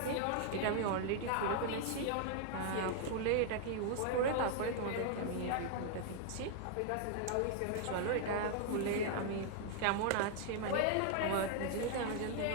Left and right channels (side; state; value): both; different; correlation 0.00